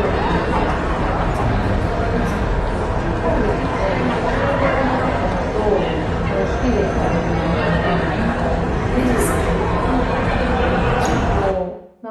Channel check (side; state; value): both; identical; correlation 1.00